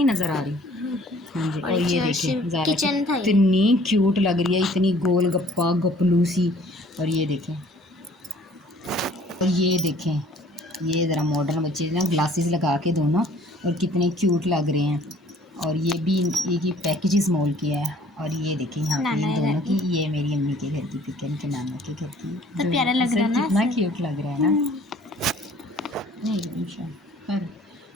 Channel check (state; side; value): normal; both; correlation 0.55